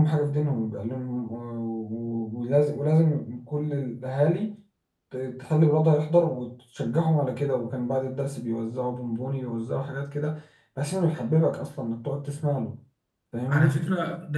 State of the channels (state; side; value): identical; both; correlation 1.00